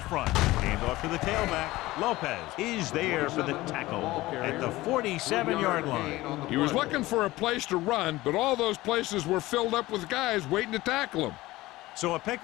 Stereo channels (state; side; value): quieter; right; 18.4 dB